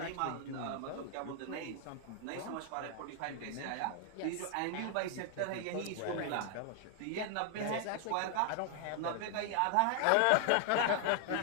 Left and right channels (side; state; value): both; different; correlation 0.00